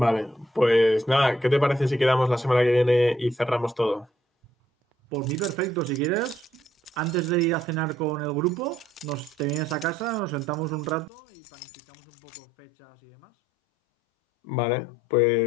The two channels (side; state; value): right; drops out; at 11.1 s